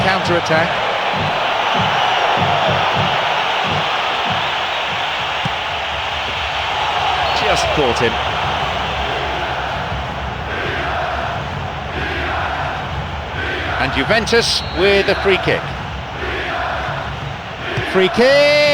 counter-attack. Just caught him. And Juventus with a free kick. Free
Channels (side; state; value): both; identical; correlation 1.00